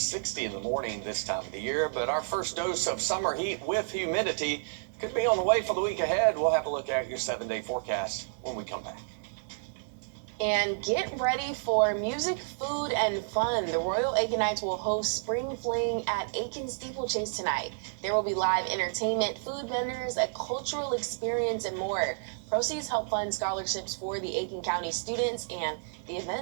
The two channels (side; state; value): left; silent; digital silence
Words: in the morning this time of the year. But our first dose of summer heat with humidity could be on the way for the week ahead. We'll have a look at your 7-day forecast when we come back. And get ready for music, food, and fun. The Royal Aikenites will host Spring Fling at Aiken Steeplechase tonight. There will be live entertainment, food vendors, a cultural experience, and more. Proceeds help fund scholarships for the Aiken County students, and the